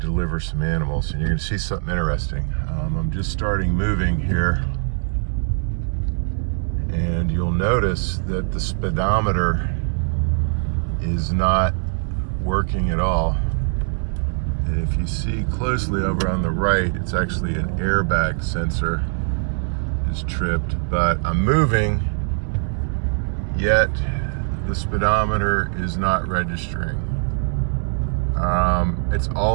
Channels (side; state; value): left; silent; 64 dB below the other